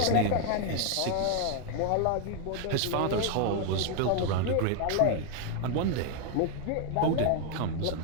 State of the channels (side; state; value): both; different; correlation 0.00